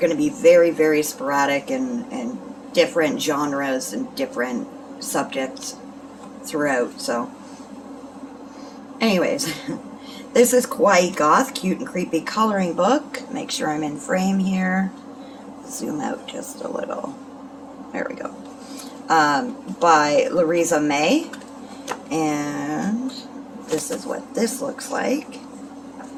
to be very, very sporadic and different genres and different subjects throughout. So anyways, this is Kawaii Goth, Cute and Creepy Coloring Book. Make sure I'm in frame here. Zoom out just a little. There we go. By Louisa May. And this is what this looks like.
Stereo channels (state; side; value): identical; both; correlation 1.00